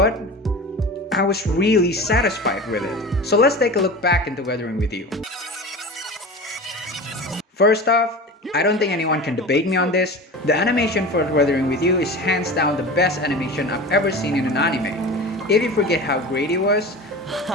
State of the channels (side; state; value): both; normal; correlation 0.33